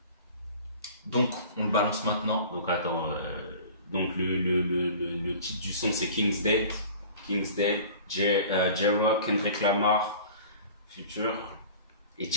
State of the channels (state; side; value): inverted; both; correlation -0.43